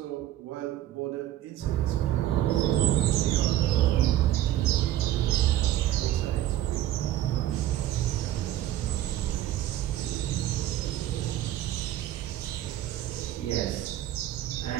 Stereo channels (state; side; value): quieter; left; 13.0 dB